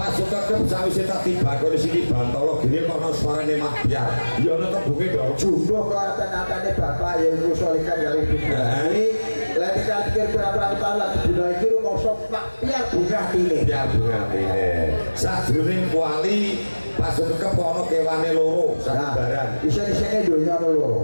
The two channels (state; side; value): inverted; both; correlation -1.00